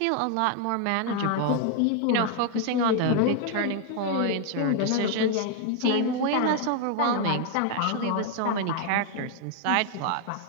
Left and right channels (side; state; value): both; different; correlation 0.01